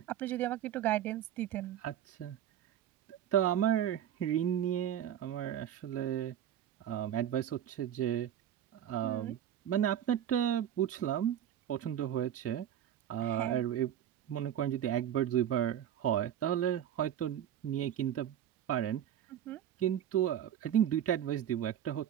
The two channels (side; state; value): left; quieter; 10.5 dB